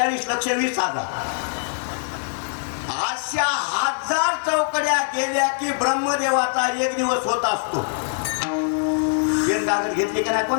अशा 1000 चौकड्या गेल्या की ब्रह्मदेवाचा एक दिवस होत असतो. पेन कागद घेतली का नाही कोण?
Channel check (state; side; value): silent; right; digital silence